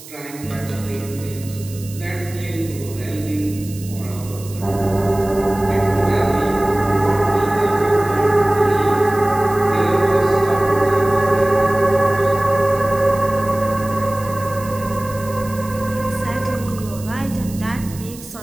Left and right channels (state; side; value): noise; right; hiss, 17 dB below the sound